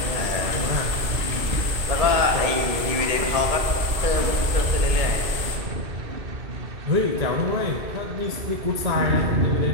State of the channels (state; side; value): late; left; 1.7 ms